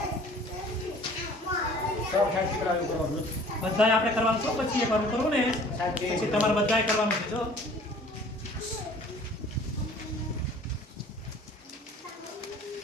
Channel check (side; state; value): both; normal; correlation 0.50